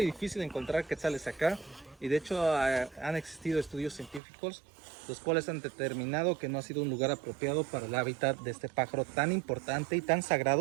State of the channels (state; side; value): drops out; left; at 4.2 s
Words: y difícil encontrar quetzales acá. Y de hecho han existido estudios científicos los cuales han determinado que no ha sido un lugar apropiado para el hábitat de este pájaro tan importante y tan